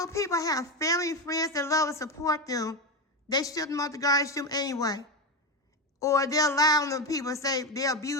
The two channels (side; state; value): both; normal; correlation 0.15